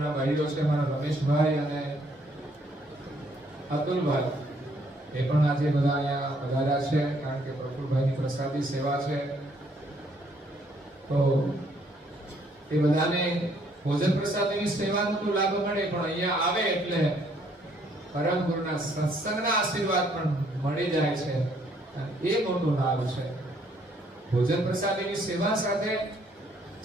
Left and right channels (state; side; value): normal; both; correlation 0.67